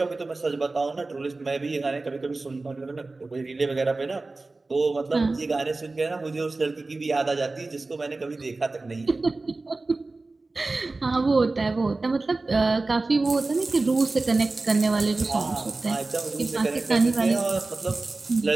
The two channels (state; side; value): quieter; left; 3.4 dB